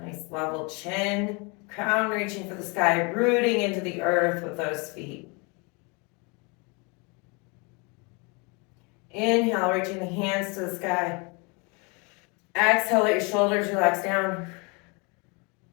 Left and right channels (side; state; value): right; quieter; 30.8 dB